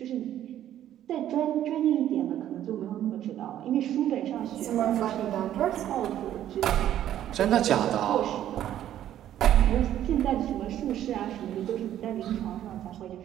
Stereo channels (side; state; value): left; quieter; 11.6 dB